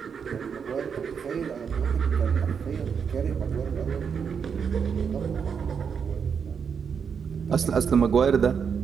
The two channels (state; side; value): quieter; left; 6.6 dB